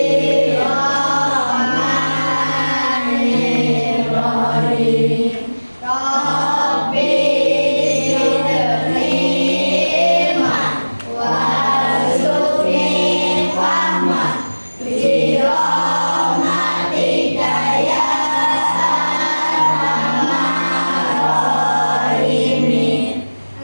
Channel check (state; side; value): inverted; both; correlation -1.00